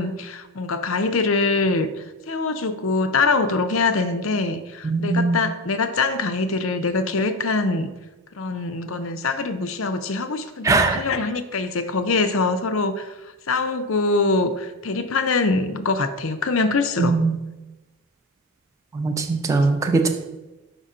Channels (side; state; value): both; normal; correlation 0.22